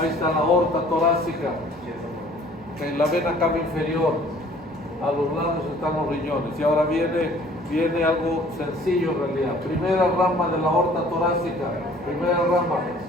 está la aorta torácica, okay, la vena cava inferior. A los lados están los riñones. Y ahora viene algo sencillo en realidad. Primera rama de la aorta torácica. Primera rama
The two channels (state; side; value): normal; both; correlation 0.54